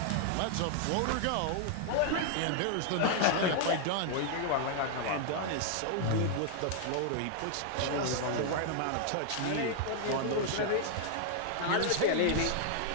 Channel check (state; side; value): different; both; correlation 0.00